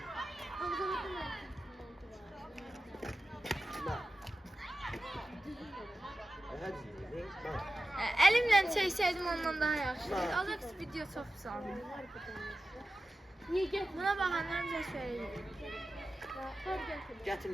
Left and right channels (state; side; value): normal; both; correlation 0.93